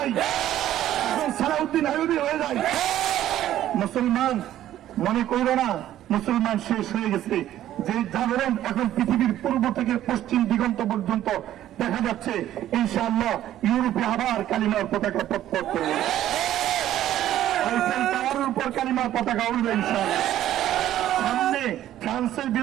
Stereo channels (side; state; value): left; quieter; 12.6 dB